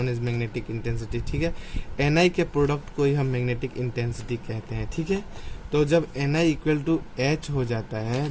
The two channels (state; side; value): identical; both; correlation 1.00